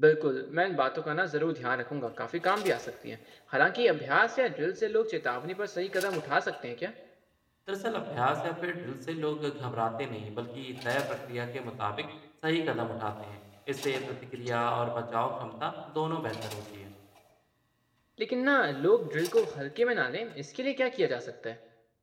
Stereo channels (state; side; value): identical; both; correlation 1.00